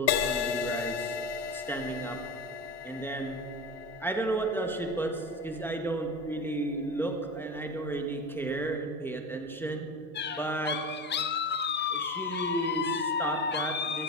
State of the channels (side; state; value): both; normal; correlation 0.26